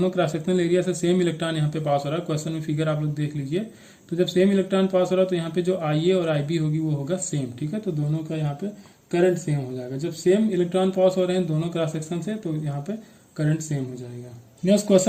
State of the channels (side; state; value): both; identical; correlation 1.00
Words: क्रॉस सेक्शनल एरिया से सेम इलेक्ट्रॉन यहाँ पे पास हो रहा है। क्वेश्चन में फिगर आप लोग देख लीजिए। तो जब सेम इलेक्ट्रॉन पास हो रहा है तो यहाँ पे जो IA और IB होगी वो होगा सेम, ठीक है। तो दोनों का यहाँ पे करंट सेम हो जाएगा। जब सेम इलेक्ट्रॉन पास हो रहे हैं दोनों क्रॉस सेक्शन से, तो यहाँ पे करंट सेम हो जाएगा। नेक्स्ट